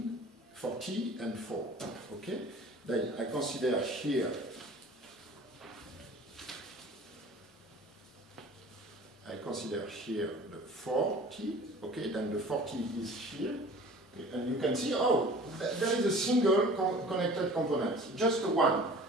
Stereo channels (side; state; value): both; normal; correlation 0.45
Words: and 4. Okay? Then I consider here the 40. Okay, then the 40 is here. Okay, and you can see, oh, there is a single connected component, just one.